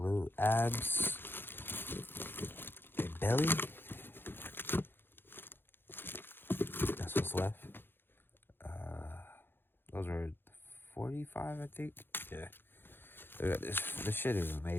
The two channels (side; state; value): right; late; 0.10 ms